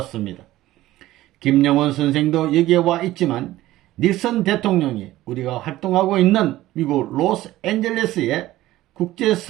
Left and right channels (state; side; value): quieter; left; 15.8 dB